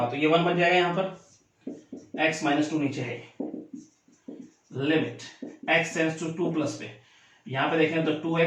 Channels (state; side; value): identical; both; correlation 1.00